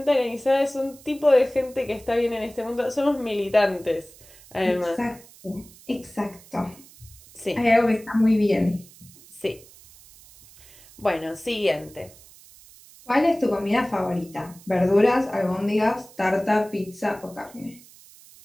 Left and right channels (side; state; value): right; noise; hiss, 23 dB below the sound